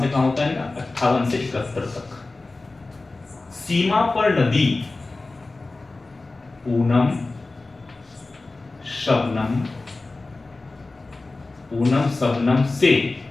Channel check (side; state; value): right; quieter; 3.3 dB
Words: से कहां होता है इनका? 58 से 71 तक। सीमा पर नदी, पूनम, शबनम, पूनम शबनम से,